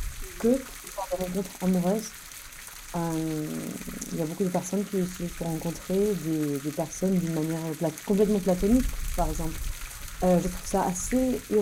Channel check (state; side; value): identical; both; correlation 1.00